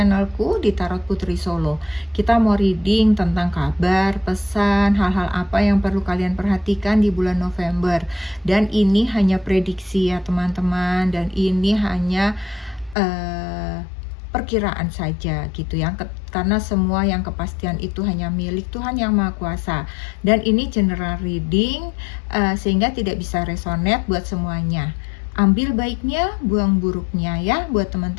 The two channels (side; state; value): right; drops out; at 13.0 s